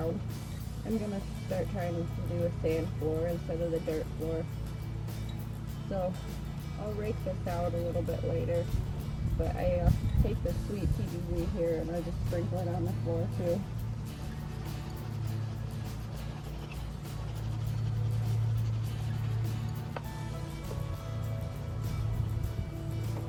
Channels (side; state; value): both; identical; correlation 1.00